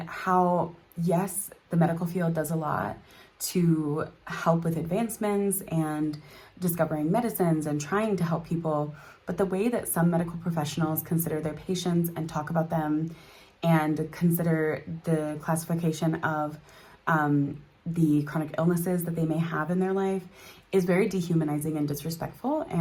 how, yes, the medical field does a lot to help with advancements and discovering medicines and trying to help people, but the way that some medical professionals consider their patients and talk about them and consider the classification of the chronic illnesses that they may have in their life is very dehumanizing and disrespectful.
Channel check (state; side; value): identical; both; correlation 1.00